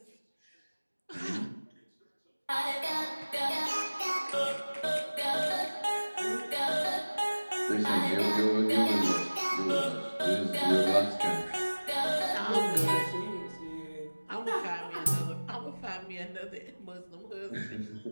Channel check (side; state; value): both; inverted; correlation -1.00